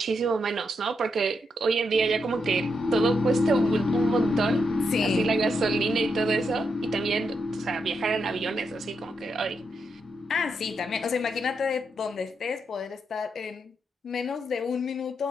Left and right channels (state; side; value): normal; both; correlation 0.82